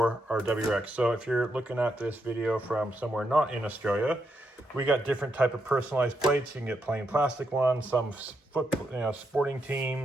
our WRX. So if you're looking at this video from somewhere not in Australia, we got different type of personalized plates. You can get plain plastic ones, some sporting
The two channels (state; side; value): normal; both; correlation 0.81